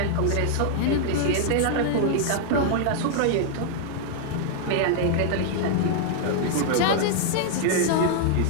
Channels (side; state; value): both; different; correlation -0.01